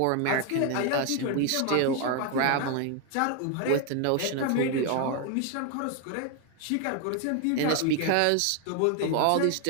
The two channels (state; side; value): different; both; correlation 0.01